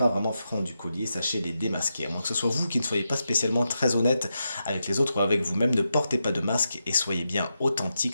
vraiment francs du collier, sachez les démasquer. À moins que ce soit vous qui ne soyez pas spécialement très honnête avec les autres ou avec vous-même, ne portez pas de masque et soyez bien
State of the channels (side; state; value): both; inverted; correlation -0.86